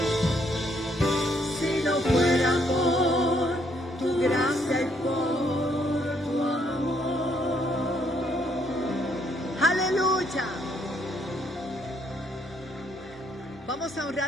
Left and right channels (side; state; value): both; normal; correlation 0.70